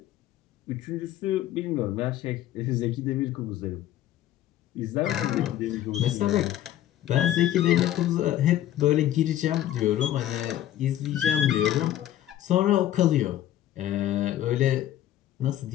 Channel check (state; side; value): quieter; right; 12.7 dB